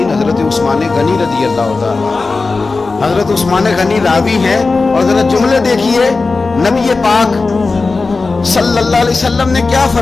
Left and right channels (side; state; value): right; quieter; 3.9 dB